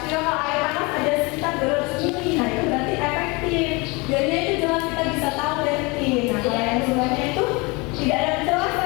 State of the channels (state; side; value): quieter; right; 26.8 dB